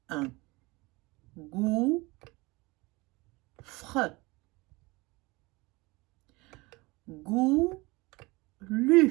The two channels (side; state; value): left; quieter; 23.6 dB